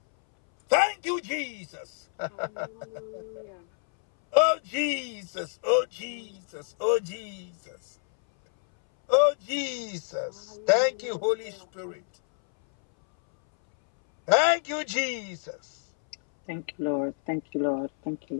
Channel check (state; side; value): silent; right; 59 dB below the other